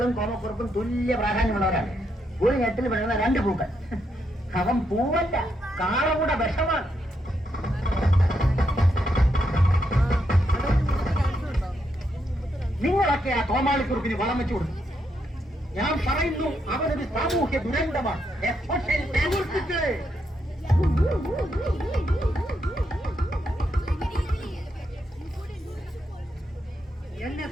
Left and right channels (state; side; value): normal; both; correlation 0.80